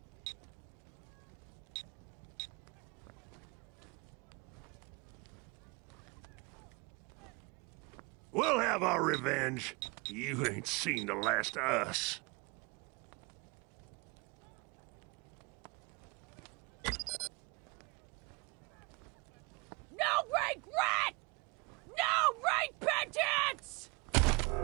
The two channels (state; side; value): quieter; left; 28.2 dB